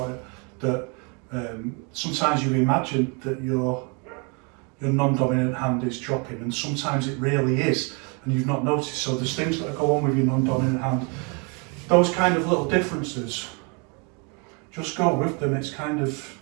it, that sometimes you imagine that your non-dominant hand is dropping, and sometimes it really is, and you've not noticed. So there's things that go on with your non-dominant hand. Those kind of little differences, just go with them. It's kind of,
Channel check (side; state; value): left; quieter; 33.3 dB